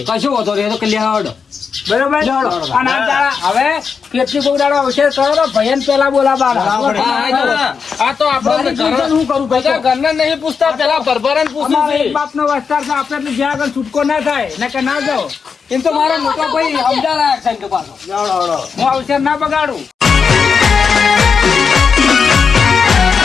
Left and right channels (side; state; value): right; quieter; 5.8 dB